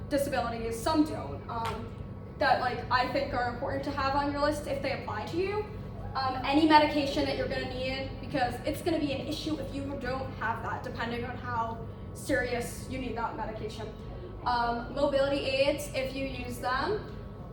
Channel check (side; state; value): both; identical; correlation 1.00